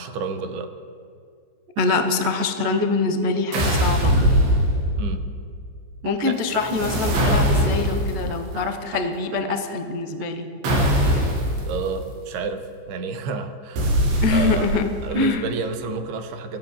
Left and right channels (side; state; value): left; late; 14 ms